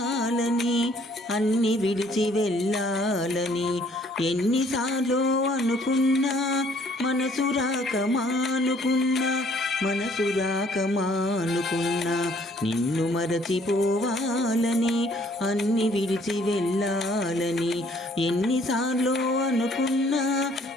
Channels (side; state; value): both; normal; correlation 0.61